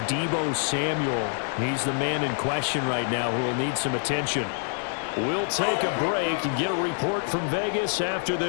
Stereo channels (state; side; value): silent; right; digital silence